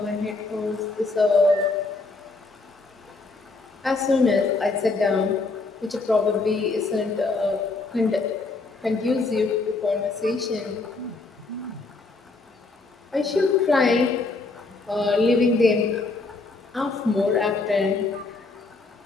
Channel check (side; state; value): right; quieter; 3.6 dB